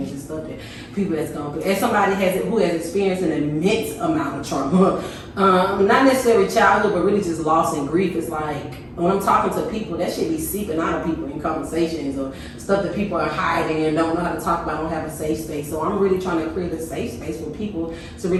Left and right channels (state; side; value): identical; both; correlation 1.00